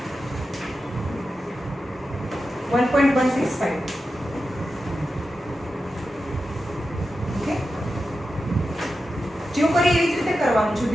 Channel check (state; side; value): normal; both; correlation 0.91